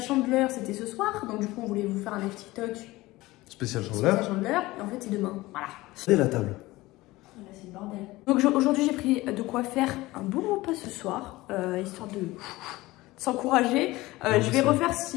c'était ce soir, donc du coup on voulait vous faire un live TikTok spécial chandeleur. Et en fait c'est demain, voilà. C'est la table. Là c'est le bordel. Donc aujourd'hui j'ai pris de quoi faire un bon repas ce soir, histoire de s'encourager. Je vais refaire,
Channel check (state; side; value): quieter; right; 19.3 dB